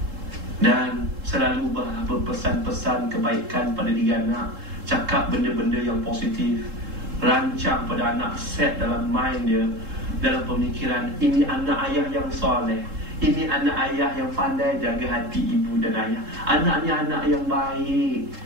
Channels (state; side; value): late; left; 3.7 ms